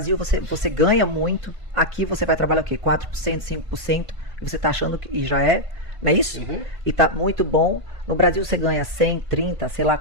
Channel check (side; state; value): left; late; 1.5 ms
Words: você ganha muito. Aqui você vai trabalhar o quê? 4%, 5%, e você tá achando que e já é, não é isso? Uhum. E tá muito bom. No Brasil você ganha 100, 30, sei lá,